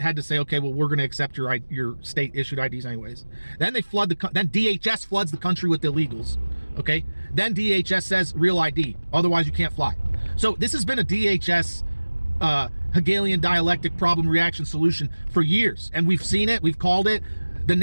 had to say, okay, well, we're going to accept your state issued IDs anyways. Then then DHS floods the country with illegals. Okay, then DHS says real ID, otherwise you can't fly. So this has been a DHS Hegelian dialectic problem reaction solution for years, and we've seen it, we've called it. The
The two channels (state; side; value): inverted; both; correlation -1.00